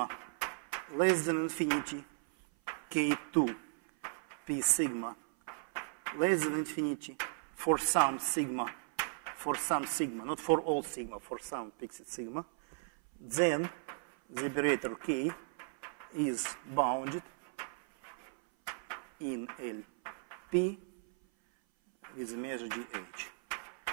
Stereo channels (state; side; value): silent; left; 54 dB below the other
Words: less than infinity, k2 p sigma less than infinity for some sigma, not for all sigma, for some fixed sigma, then the operator k is bounded in LP with a measure dh